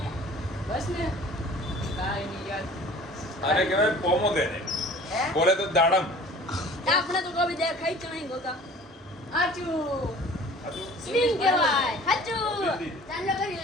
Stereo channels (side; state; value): both; normal; correlation 0.47